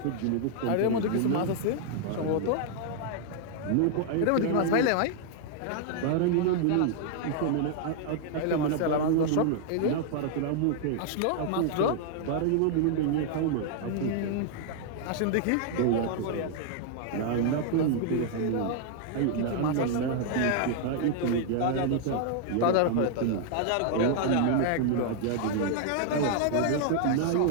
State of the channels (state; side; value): different; both; correlation 0.00